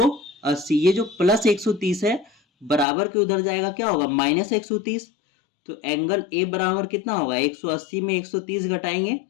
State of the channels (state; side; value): drops out; right; at 2.9 s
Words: ये जो प्लस 130 है बराबर के उधर जाएगा, क्या होगा माइनस 130। तो एंगल ए बराबर कितना होगा, 180 में 130 घटाएंगे